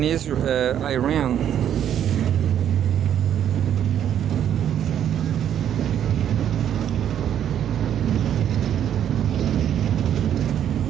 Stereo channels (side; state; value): left; quieter; 9.9 dB